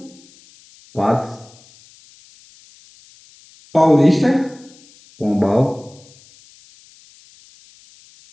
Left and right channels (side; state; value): left; noise; hiss, 27 dB below the sound